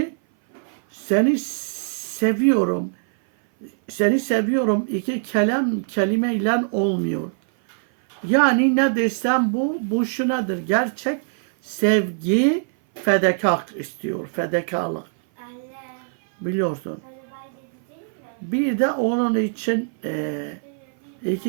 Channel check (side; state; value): left; silent; 58 dB below the other